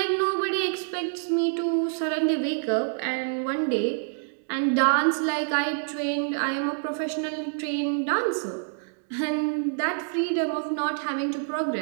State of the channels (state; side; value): silent; left; digital silence